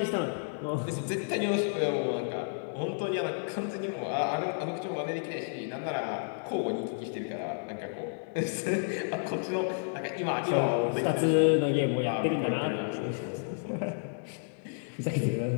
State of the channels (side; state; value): right; silent; digital silence